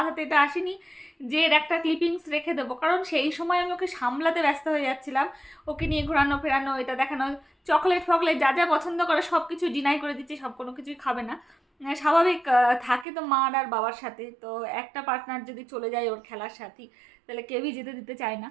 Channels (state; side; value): drops out; left; at 13.1 s